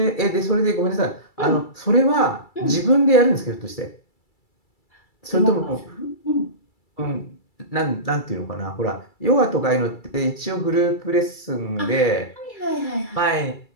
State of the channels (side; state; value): right; late; 2.3 ms